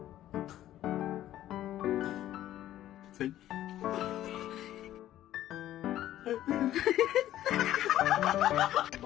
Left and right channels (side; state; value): right; quieter; 13.1 dB